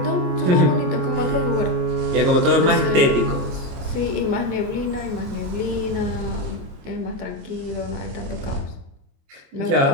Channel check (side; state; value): left; late; 22 ms